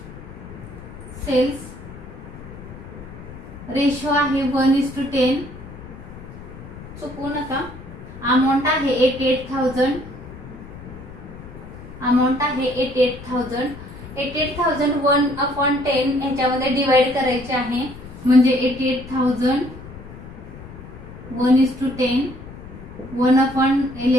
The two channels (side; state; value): left; noise; rumble, 15 dB below the sound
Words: सेल्स रेशो आहे 1:10. चुकवू नका. अमाऊंट आहे 88,000. अमाऊंट आहे 88,000. 88,000 1/10 ह्याच्यामध्ये डिवाइड करायचे आहे, म्हणजे 88,000 1:10.